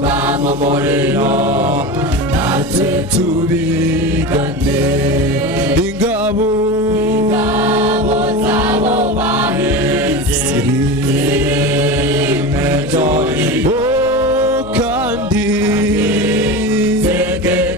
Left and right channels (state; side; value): noise; left; hum, 19 dB below the sound